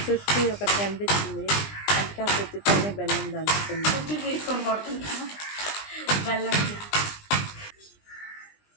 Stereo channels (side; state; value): right; late; 20 ms